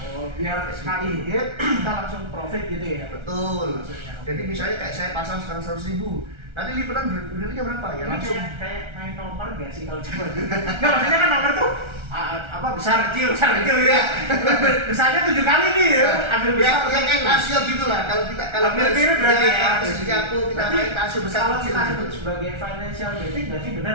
Oh, biar sekali hit kita langsung profit gitu ya. Betul. Jadi misalnya kayak saya pasang sekarang 100.000. Nanti lipatan berdirinya berapa ya? Langsung kayak main nomor gak sih kalau coba dulu? Nggak, maksudnya kan nomor tuh apa besar kecil ya. Besarnya 7 kali nih ya. Ambil besar. Ya kayak tasio gitulah. Kalau ambil tiru berarti ya. Kita main tasio besar kalau kecil. Kita sebut sebagai financial betting berarti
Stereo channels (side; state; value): left; late; 1.3 ms